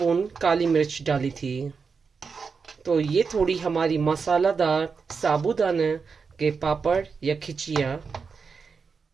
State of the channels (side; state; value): left; quieter; 5.3 dB